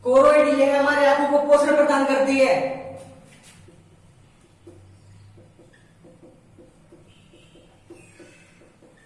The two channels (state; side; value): identical; both; correlation 1.00